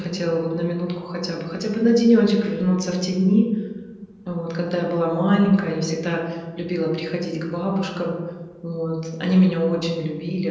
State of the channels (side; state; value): both; identical; correlation 1.00